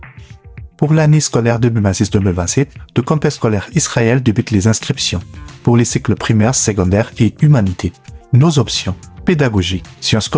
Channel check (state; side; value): identical; both; correlation 1.00